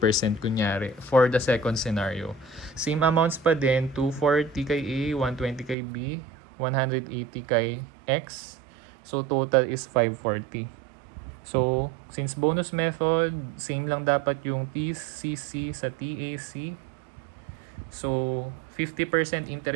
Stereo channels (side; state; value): left; drops out; at 5.8 s